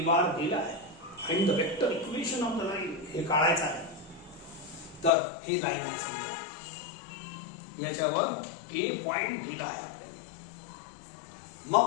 बार दिला आहे. Find the vector equation of the line. हे काढायचं आहे. तर ही लाईन आहे समजा. याच्यावर ए पॉइंट दिला आहे आपल्याला.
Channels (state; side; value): drops out; right; at 5.1 s